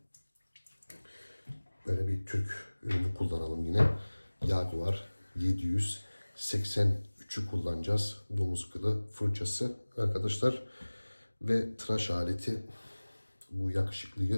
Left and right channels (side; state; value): both; inverted; correlation -1.00